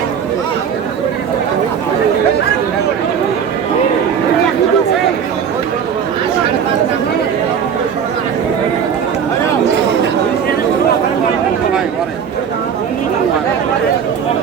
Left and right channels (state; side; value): quieter; left; 7.5 dB